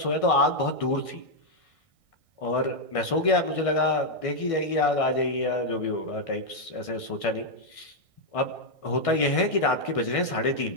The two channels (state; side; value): late; right; 1.6 ms